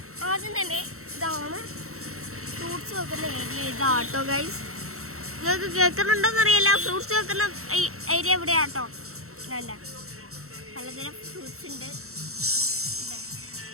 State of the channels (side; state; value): left; late; 0.63 ms